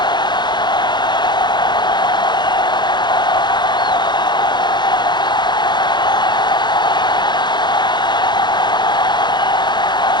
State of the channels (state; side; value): late; right; 0.21 ms